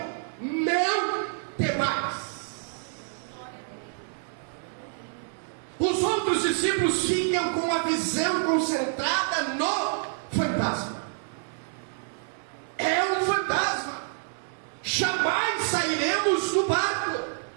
não temais. Os outros discípulos ficam com a visão concentrada no fantasma. É um fantasma. Jamais sairemos do barco.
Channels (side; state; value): left; silent; 60 dB below the other